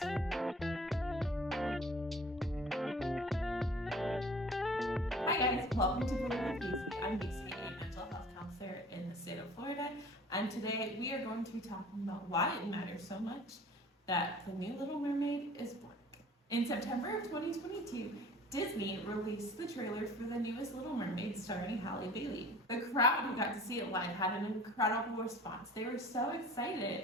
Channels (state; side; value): normal; both; correlation 0.47